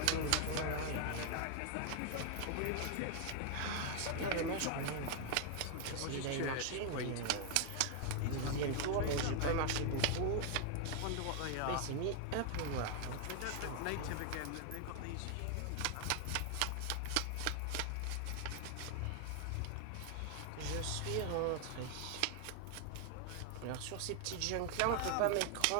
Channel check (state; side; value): different; both; correlation 0.00